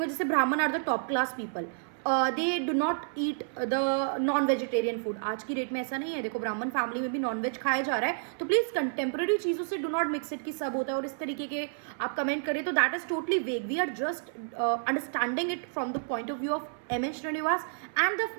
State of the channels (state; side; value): silent; left; 58 dB below the other